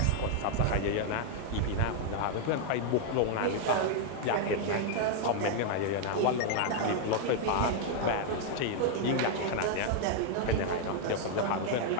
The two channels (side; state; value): both; different; correlation 0.00